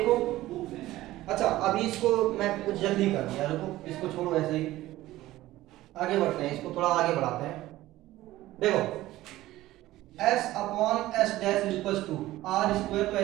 अच्छा अभी इसको मैं कुछ जल्दी कर दिया, रुको इसको छोड़ो ऐसे ही, आगे बढ़ते हैं, इसको थोड़ा आगे बढ़ाते हैं। देखो s upon S dash equal to R square, तो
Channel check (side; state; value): left; quieter; 16.2 dB